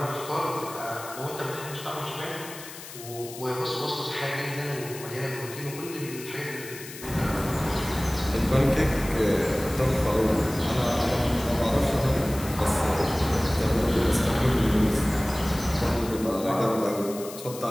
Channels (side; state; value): left; noise; hiss, 14 dB below the sound